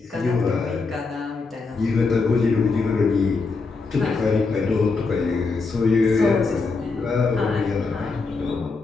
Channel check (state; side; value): quieter; right; 4.2 dB